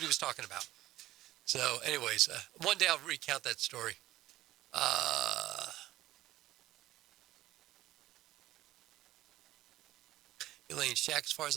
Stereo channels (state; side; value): quieter; left; 15.4 dB